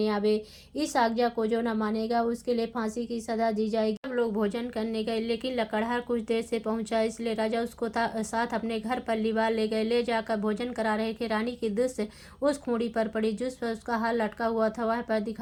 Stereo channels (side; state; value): both; identical; correlation 1.00